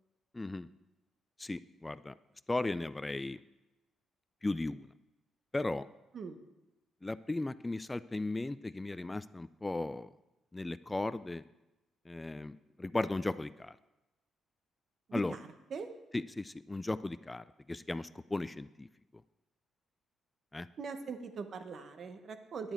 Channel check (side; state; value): both; normal; correlation 0.97